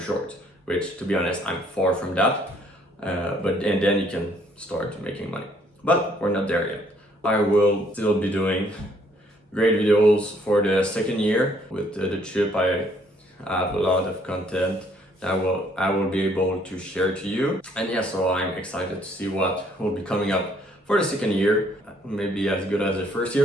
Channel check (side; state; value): both; normal; correlation 0.65